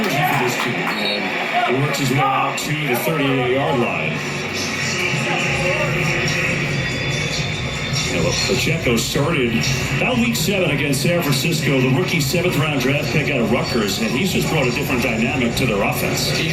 for this team. And he works his way out to the 38-yard line. Yeah, look, Pacheco started about week 7 against San Francisco, the rookie 7th-round draft pick out of Rutgers, and he's just brought a different dynamic to their offense. He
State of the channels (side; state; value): both; identical; correlation 1.00